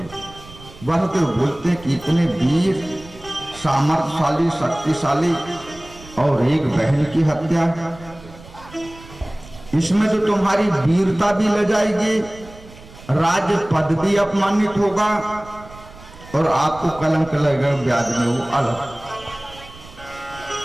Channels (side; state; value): right; noise; rumble, 20 dB below the sound